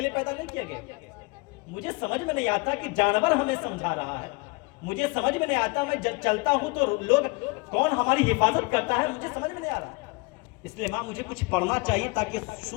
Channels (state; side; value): quieter; right; 26.2 dB